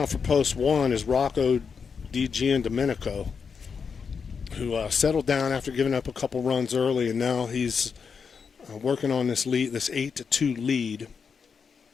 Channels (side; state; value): right; quieter; 6.0 dB